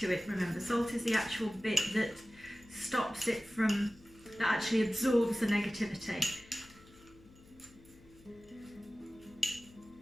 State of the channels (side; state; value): left; noise; hum, 25 dB below the sound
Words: to it, remember. Salt is the actual bit that stops it from, that actually absorbs the negativity.